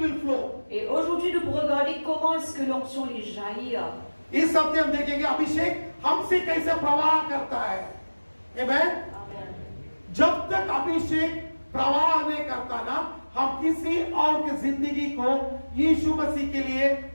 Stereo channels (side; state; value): both; inverted; correlation -1.00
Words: flow. Et aujourd'hui, nous pourrons regarder comment est-ce que l'onction les jaillit. इस हफ्ते हम देखेंगे अभिषेक हमसे कैसे प्रवाह करता है. Amen. जब तक अभिषेक प्रवाह नहीं करता ना, हम किसी और की जिंदगी को यीशु मसीह के लिए